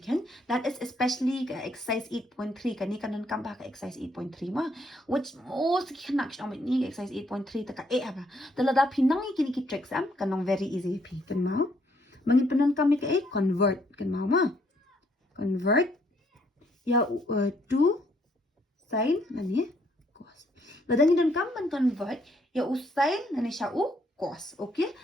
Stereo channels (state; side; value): normal; both; correlation 0.70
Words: ken. That is especially exercise 8.3 kani kanan kam ba ka exercise 8.3 ma. Which most kanak shom ni exercise 8.3 taka apa. Talada pinang kini ki tricks am kanong very easy pi kan mau. Mangin penan kami ka convert kan mau ma. Convert ya to sin nani cos. Ladang dan kam ban convert ya usain nani sya u cos. Okay?